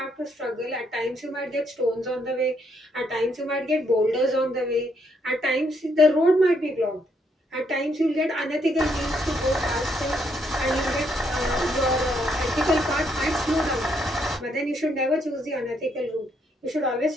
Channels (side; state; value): both; normal; correlation 0.74